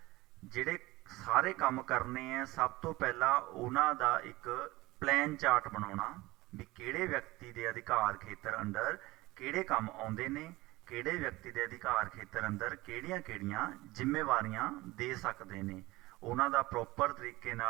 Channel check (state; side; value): quieter; left; 20.0 dB